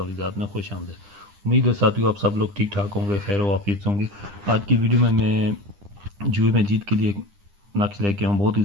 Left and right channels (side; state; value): left; late; 9.9 ms